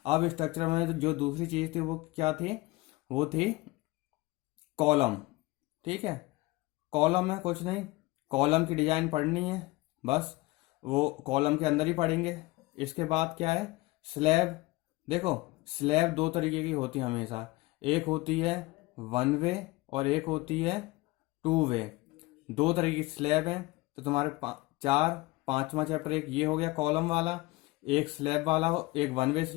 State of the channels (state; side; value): quieter; right; 21.6 dB